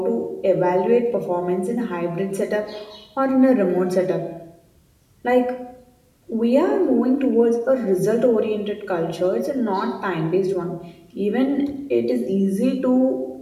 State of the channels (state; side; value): identical; both; correlation 1.00